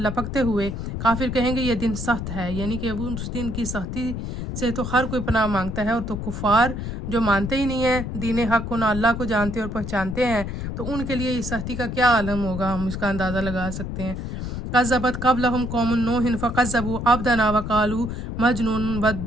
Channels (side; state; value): left; noise; rumble, 5 dB below the sound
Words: ہوئے کافر کہیں گے یہ دن سخت ہے. یعنی کہ وہ اس دن کی سختی سے تو ہر کوئی پناہ مانگتا ہے، اور تو کفار جو مانتے ہی نہیں ہیں دین حق کو، نہ اللہ کو جانتے اور پہچانتے ہیں، تو ان کے لیے اس سختی کا کیا عالم ہوگا، ہم اس کا اندازہ لگا سکتے ہیں. کذبت قبلہم قوم نوح فکذبوا عبدنا وقالوا مجنون